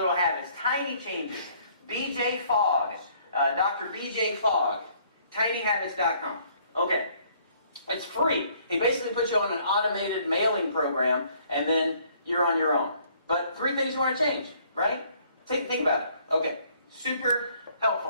habits, tiny changes. BJ Fogg, Dr. BJ Fogg, tinyhabits.com. Okay. It's free. He basically puts you on an automated mailing program and then you're on your own. But 3 things you want to change, right? Think about it. Okay. Super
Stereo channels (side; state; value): both; inverted; correlation -0.62